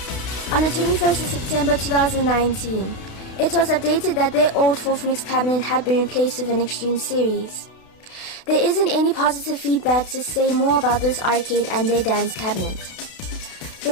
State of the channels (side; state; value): right; late; 32 ms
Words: On the 21st of September 2019, it was updated that their old 4th mix cabinet had been replaced with an Extreme series. There isn't any positive feedback to say more about this arcade and their dance cabinet.